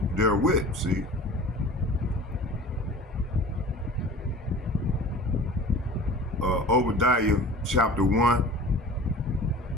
therewith, see? Obadiah chapter 1.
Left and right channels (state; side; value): normal; both; correlation 0.41